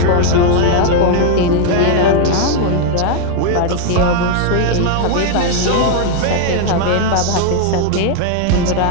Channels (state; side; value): different; both; correlation 0.00